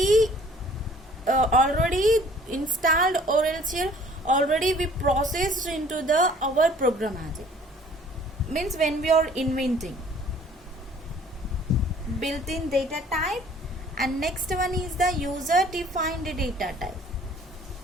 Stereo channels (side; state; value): both; normal; correlation 0.54